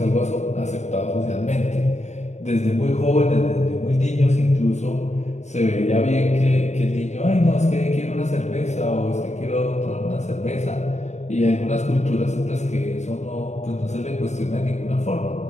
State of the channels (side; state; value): right; late; 0.33 ms